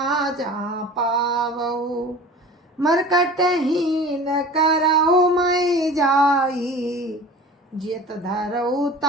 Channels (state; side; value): normal; both; correlation 0.40